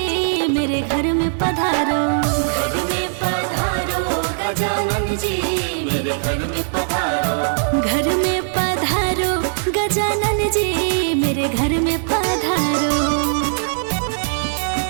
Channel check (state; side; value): silent; left; digital silence